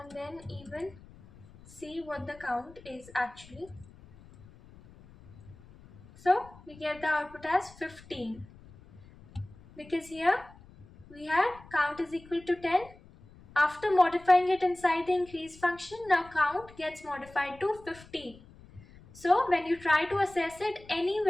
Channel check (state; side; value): noise; left; rumble, 22 dB below the sound